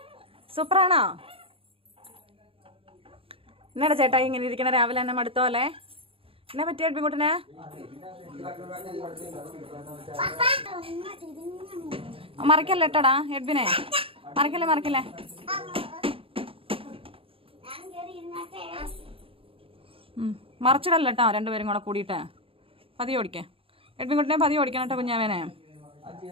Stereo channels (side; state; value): left; late; 0.27 ms